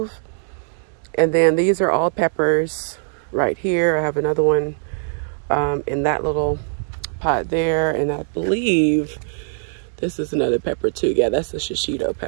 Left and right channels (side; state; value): left; silent; digital silence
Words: And then these are all peppers right here. I have another one in that little pot there, and I believe this is another pepper too. Yeah, that's the shishito